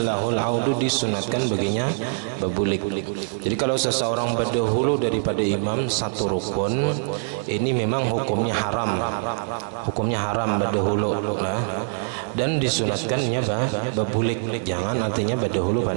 lahul audu, disunatkan baginya babulik. Jadi kalau seseorang berdahulu daripada imam satu rukun, ini memang hukumnya haram, berdahulu nah, dan disunatkannya babulik, jangan artinya berdahulu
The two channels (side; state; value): left; silent; 60 dB below the other